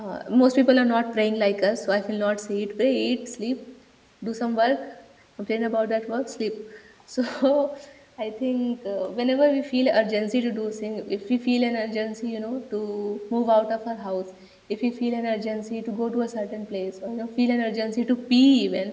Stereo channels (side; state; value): both; identical; correlation 1.00